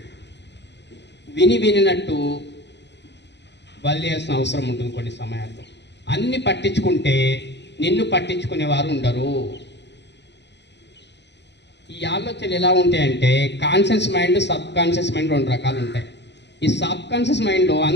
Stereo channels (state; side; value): late; right; 0.51 ms